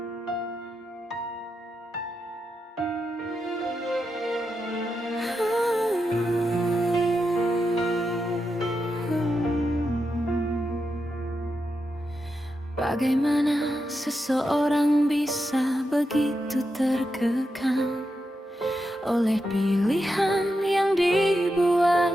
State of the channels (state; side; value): normal; both; correlation 0.87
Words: Bagaimana seseorang bisa begitu terkekang oleh pilihan yang dibuat